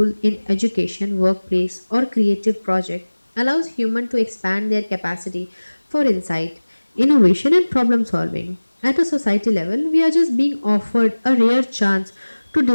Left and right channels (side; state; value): both; inverted; correlation -1.00